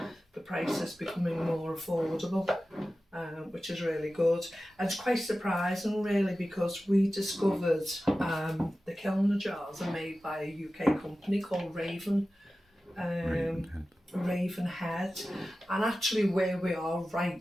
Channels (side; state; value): both; normal; correlation 0.95